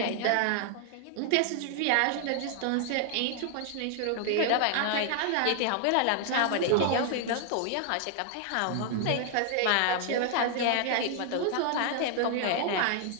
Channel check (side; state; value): both; different; correlation 0.00